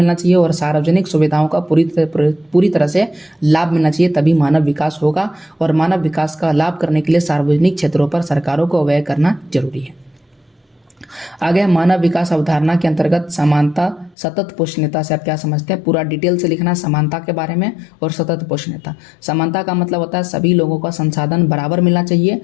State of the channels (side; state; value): right; drops out; at 14.2 s